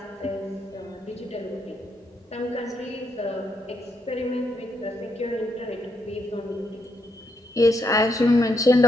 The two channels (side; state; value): both; normal; correlation 0.79